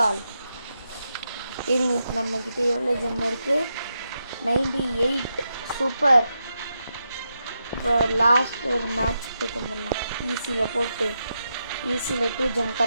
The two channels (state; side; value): inverted; both; correlation -0.85